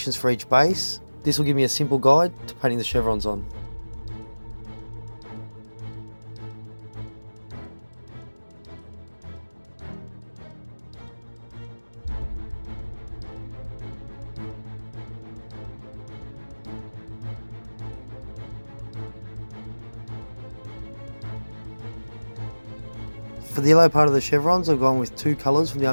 for each base. This will give me a simple guide to painting the chevrons on. For the yellow part of the chevrons, I've gone with 2 colours from the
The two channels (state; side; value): inverted; both; correlation -1.00